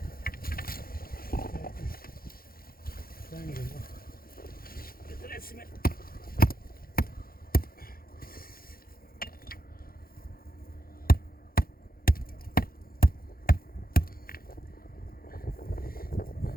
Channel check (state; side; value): late; right; 0.43 ms